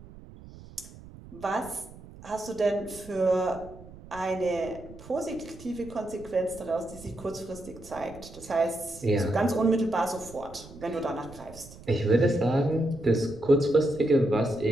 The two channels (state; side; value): noise; right; rumble, 18 dB below the sound